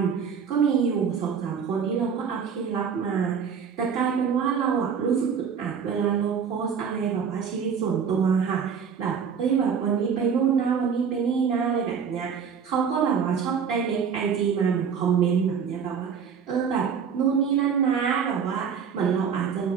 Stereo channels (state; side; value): quieter; left; 6.8 dB